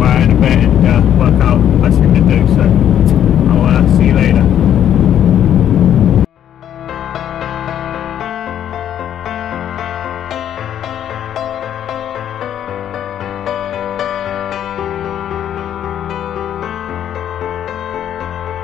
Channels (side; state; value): right; quieter; 10.2 dB